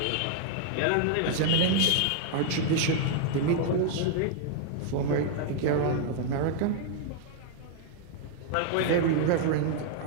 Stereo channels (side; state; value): both; different; correlation 0.00